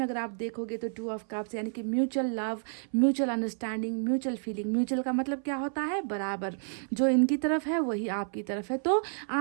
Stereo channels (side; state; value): left; silent; 58 dB below the other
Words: अगर आप देखोगे तो 2 ऑफ कप्स, यानी कि mutual love, mutual understanding, mutual feeling. Mutual का मतलब क्या होता है, बराबर, जो इनकी तरफ है वही आपकी तरफ है। तो